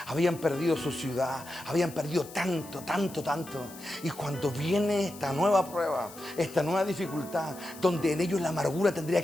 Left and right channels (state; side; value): noise; left; hiss, 17 dB below the sound